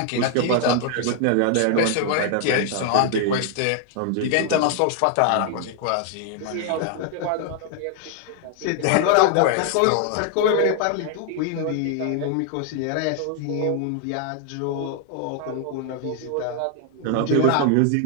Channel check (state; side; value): different; both; correlation 0.00